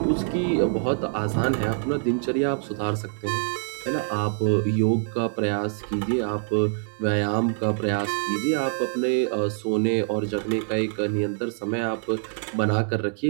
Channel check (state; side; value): silent; left; 62 dB below the other